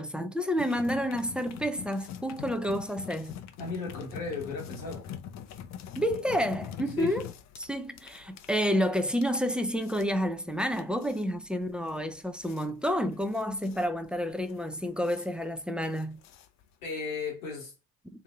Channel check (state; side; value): normal; both; correlation 0.72